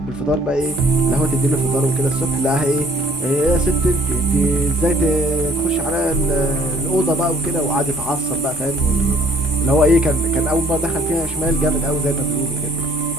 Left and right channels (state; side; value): normal; both; correlation 0.58